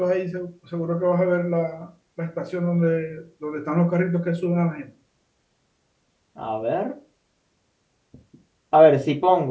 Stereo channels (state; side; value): identical; both; correlation 1.00